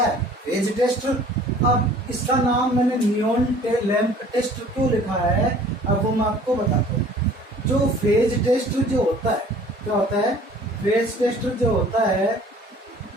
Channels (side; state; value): both; normal; correlation 0.51